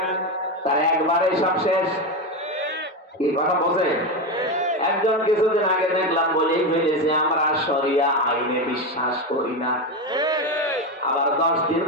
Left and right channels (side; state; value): both; normal; correlation 0.14